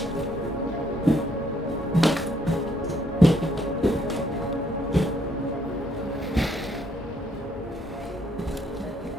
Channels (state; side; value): normal; both; correlation 0.70